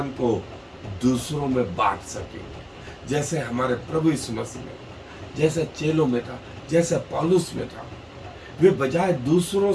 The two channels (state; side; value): identical; both; correlation 1.00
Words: को दूसरों में बांट सकेंगे। जैसे हमारे प्रभु यीशु मसीह में, जैसे चेलों में था, जैसे पौलुस में था, वे बजाय दूसरों